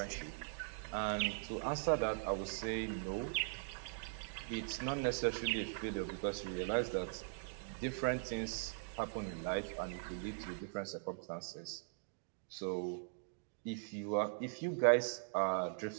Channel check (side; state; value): left; silent; digital silence